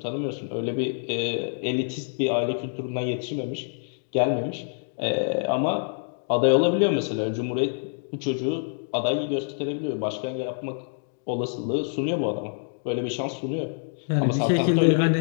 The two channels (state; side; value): silent; right; digital silence